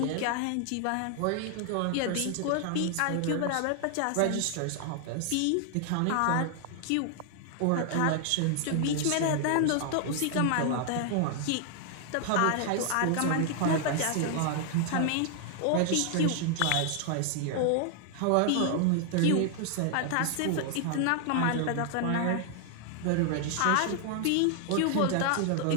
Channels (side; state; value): both; different; correlation 0.00